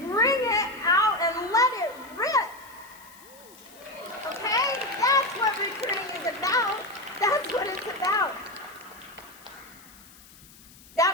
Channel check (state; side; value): noise; left; hiss, 22 dB below the sound